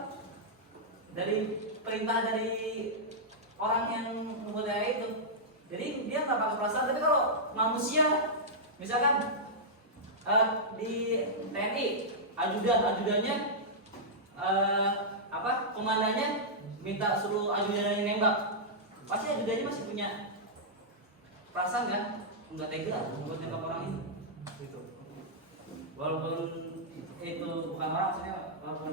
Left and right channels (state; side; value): normal; both; correlation -0.10